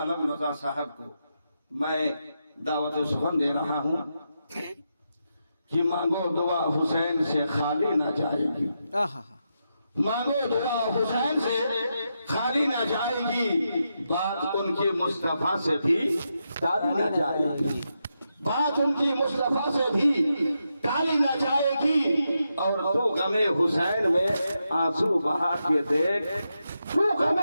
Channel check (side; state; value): both; inverted; correlation -0.85